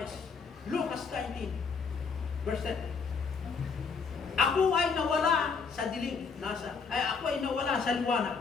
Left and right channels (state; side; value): quieter; right; 5.3 dB